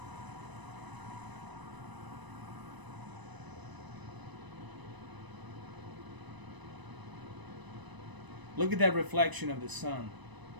Look at that reflection of the sun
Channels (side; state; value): left; late; 1.0 ms